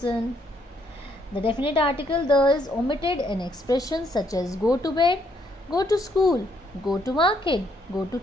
The definite article the is omitted in expressions such as go to bed, go to school, go to market, go to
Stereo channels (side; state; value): both; normal; correlation 0.71